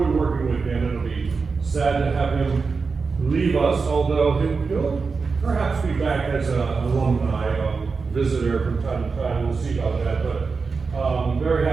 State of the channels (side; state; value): left; quieter; 4.7 dB